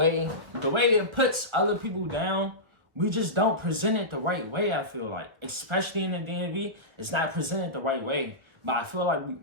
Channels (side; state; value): left; late; 1.4 ms